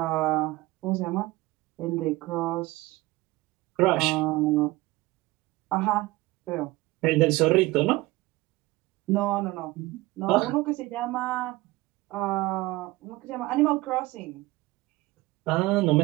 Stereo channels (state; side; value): quieter; left; 20.0 dB